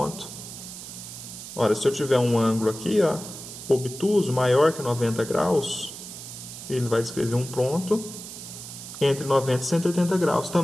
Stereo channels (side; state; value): right; noise; hiss, 12 dB below the sound